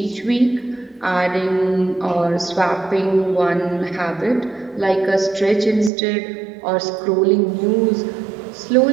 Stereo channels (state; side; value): drops out; left; at 5.9 s